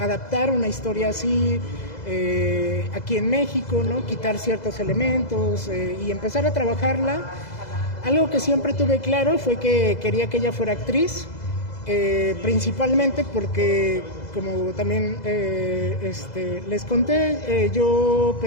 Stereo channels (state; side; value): late; right; 2.0 ms